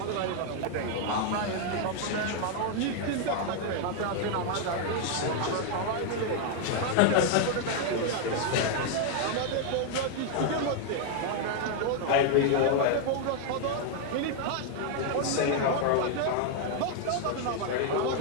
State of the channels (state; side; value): different; both; correlation 0.00